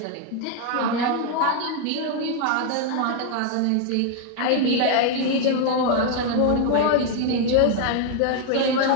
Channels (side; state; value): both; different; correlation 0.00